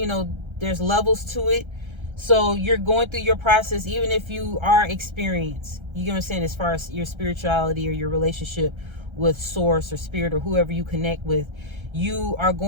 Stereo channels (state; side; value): late; left; 1.3 ms